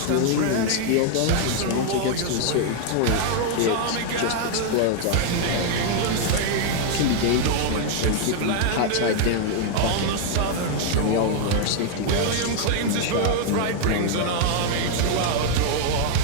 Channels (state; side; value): different; both; correlation 0.00